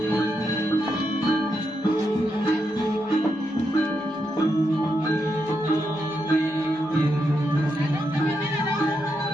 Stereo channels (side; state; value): both; normal; correlation 0.83